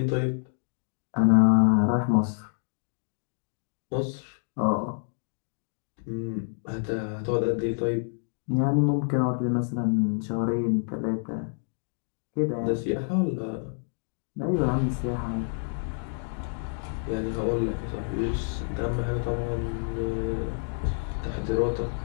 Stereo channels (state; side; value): silent; right; digital silence